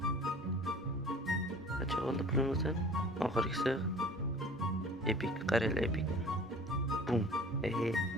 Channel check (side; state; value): both; normal; correlation 0.46